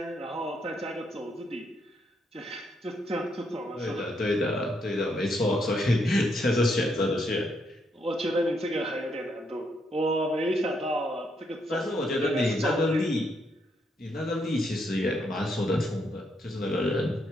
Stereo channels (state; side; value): normal; both; correlation 0.76